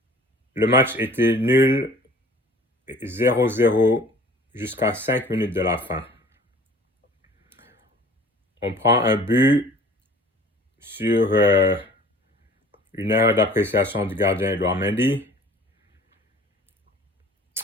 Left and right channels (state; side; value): normal; both; correlation 0.48